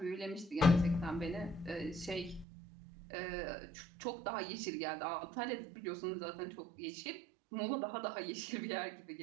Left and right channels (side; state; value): left; drops out; at 2.5 s